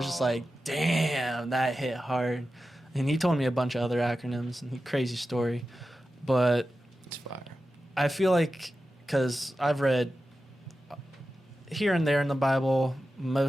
just like, damn, that hit hard. And he told me a bunch of other acronyms and crazy story. But It's fire. I feel like, because I've read here and there in the Bible,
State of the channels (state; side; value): normal; both; correlation 0.93